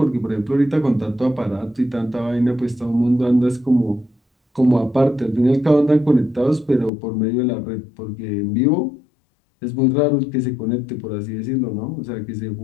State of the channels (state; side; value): drops out; right; at 6.9 s